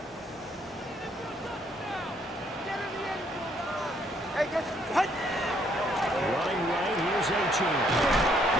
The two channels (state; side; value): normal; both; correlation 0.68